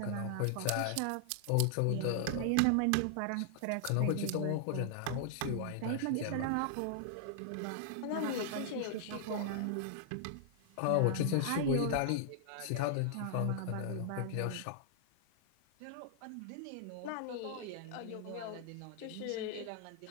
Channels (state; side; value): different; both; correlation -0.01